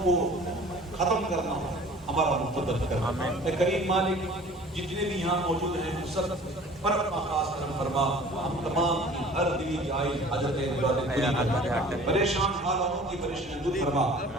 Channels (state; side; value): normal; both; correlation 0.47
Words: کو ختم کرنا ہمارا مقدر کر. آمین. اے کریم مالک جتنے بھی یہاں موجود ہیں سب پر اپنا خاص کرم فرما. ہم تمام کی ہر دلی جائز حاجت پریشان حالوں کی پریشانی دور فرما.